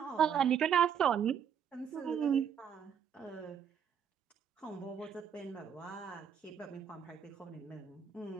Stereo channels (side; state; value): left; quieter; 8.0 dB